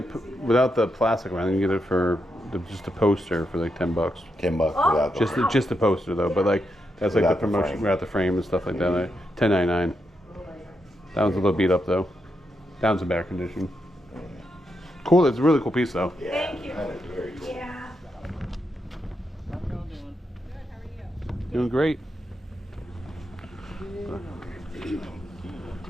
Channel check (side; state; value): both; normal; correlation 0.83